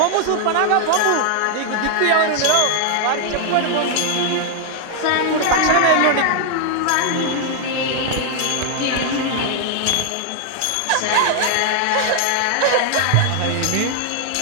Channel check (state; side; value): different; both; correlation 0.00